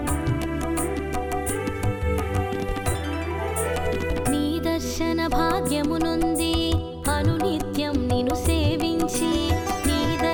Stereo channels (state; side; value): identical; both; correlation 1.00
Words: నీ దర్శన భాగ్యమునుంది అనునిత్యం నిన్ను సేవించి నీ